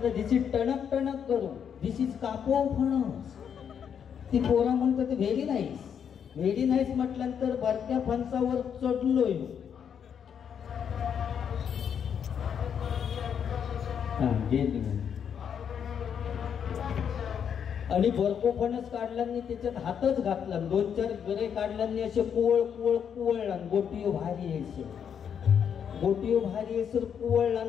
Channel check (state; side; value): quieter; right; 7.9 dB